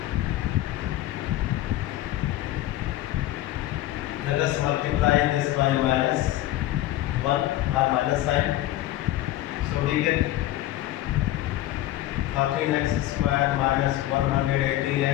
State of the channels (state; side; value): quieter; right; 14.7 dB